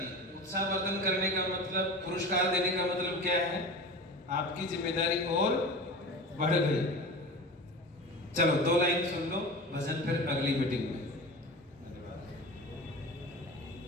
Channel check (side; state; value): both; normal; correlation 0.32